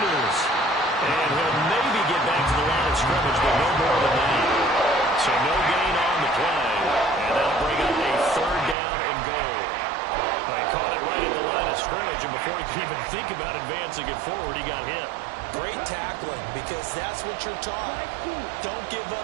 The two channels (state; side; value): drops out; left; at 8.8 s